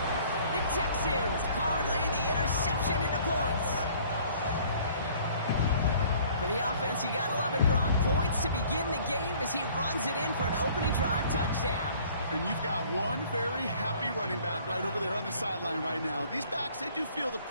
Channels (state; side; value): inverted; both; correlation -0.55